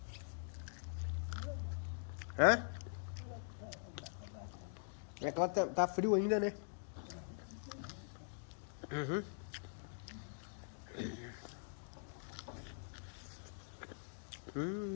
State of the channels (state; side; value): silent; right; digital silence